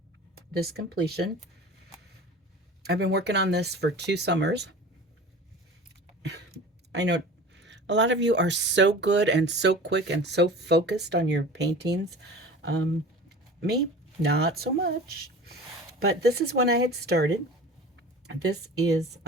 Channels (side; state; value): both; normal; correlation 0.39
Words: this completion. I've been working on this for 2 summers. I know a lot of you are so good and so quick and so focused on your paintings. Um, Me, not so much. But this is when I had started. This is